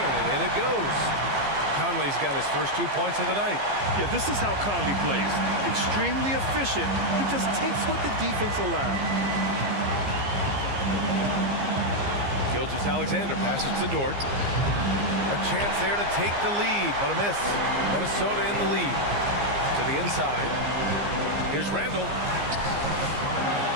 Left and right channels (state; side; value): late; left; 15 ms